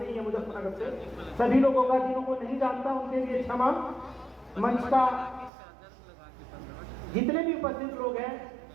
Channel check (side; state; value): left; drops out; at 5.5 s